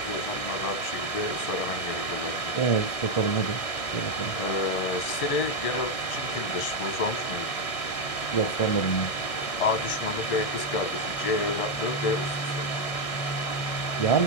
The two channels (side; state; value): right; late; 1.6 ms